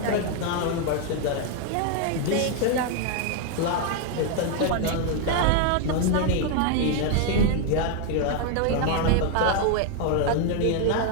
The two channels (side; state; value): both; different; correlation 0.00